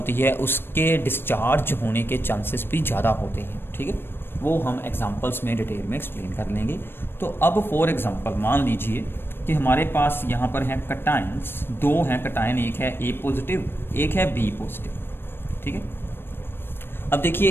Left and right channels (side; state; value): right; late; 0.10 ms